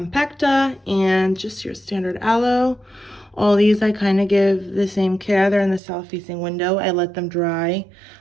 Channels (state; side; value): drops out; left; at 5.8 s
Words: and just your standard aloe. All these I kind of give the same care. They're in the south facing window. I let them dry